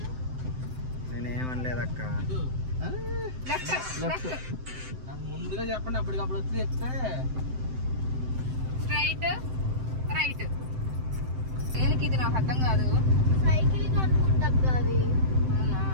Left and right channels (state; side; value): late; left; 7.8 ms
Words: నేనేమనలేదు అక్క. ముందుగా చెప్పండి, అప్పటికప్పుడు వచ్చి చెప్తే. Straight right. దేనికి ఇది నాకు అర్థం కాదు. సైకిల్ అనుకుంటా అవి. అవునా?